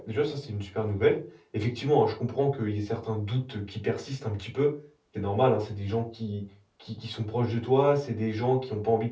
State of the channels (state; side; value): identical; both; correlation 1.00